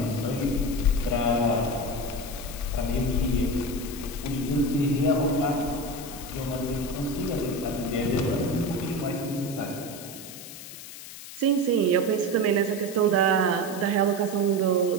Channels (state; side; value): noise; left; hiss, 13 dB below the sound